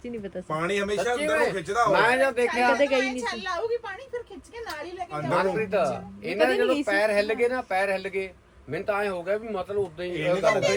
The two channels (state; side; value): identical; both; correlation 1.00